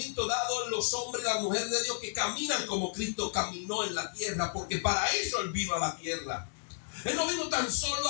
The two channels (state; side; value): silent; right; digital silence